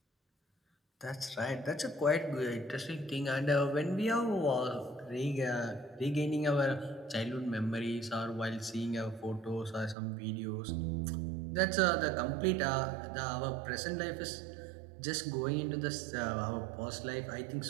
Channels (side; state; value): left; drops out; at 10.0 s